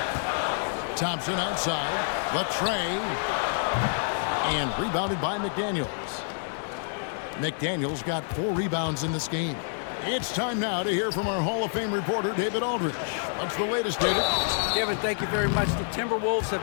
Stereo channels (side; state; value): right; silent; digital silence